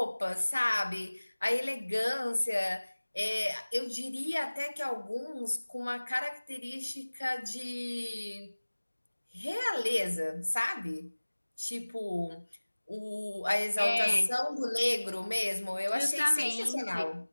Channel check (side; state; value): both; inverted; correlation -1.00